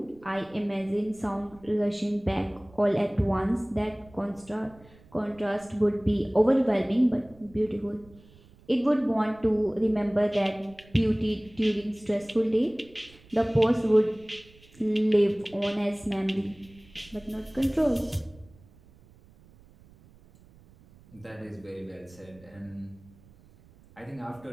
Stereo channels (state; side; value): noise; right; rumble, 26 dB below the sound